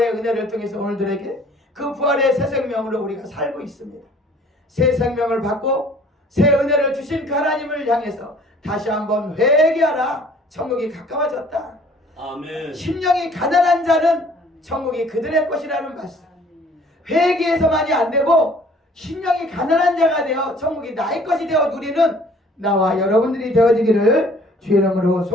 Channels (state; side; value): normal; both; correlation 0.54